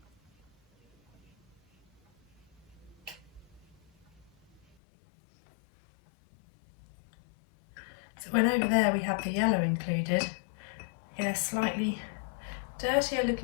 So when over there we have the yellow included, in a slightly dirtier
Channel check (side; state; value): right; drops out; at 4.6 s